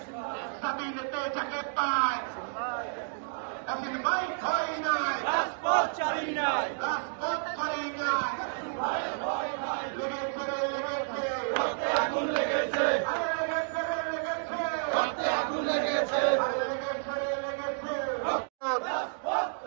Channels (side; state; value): left; silent; digital silence